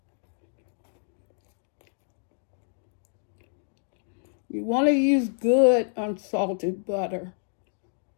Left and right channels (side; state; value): right; silent; digital silence